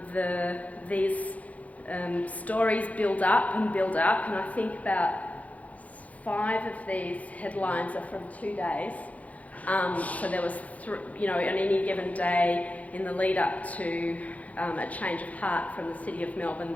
these stories build up, and I think about 5 of these headlines are from 2 days. So there was, on any given day in the lead up to a change of heart from the City of Melbourne,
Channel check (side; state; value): right; late; 0.070 ms